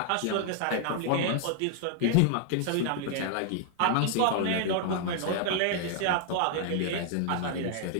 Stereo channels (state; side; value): different; both; correlation 0.00